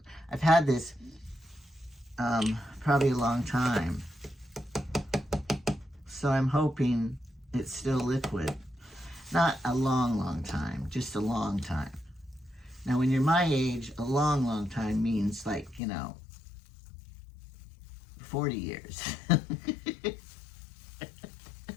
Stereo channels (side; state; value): right; drops out; at 15.8 s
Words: I've had this probably a long time. So I'm hoping it's still liquid. Not a long, long time, just a long time. Now, when you're my age, a long, long time means like, you know, 40 years.